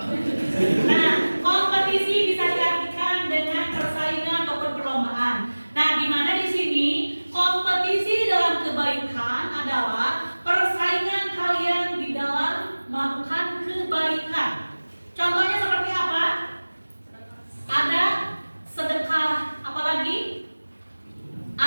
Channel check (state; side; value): inverted; both; correlation -1.00